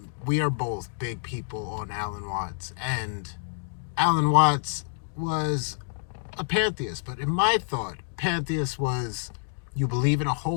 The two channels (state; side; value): silent; right; digital silence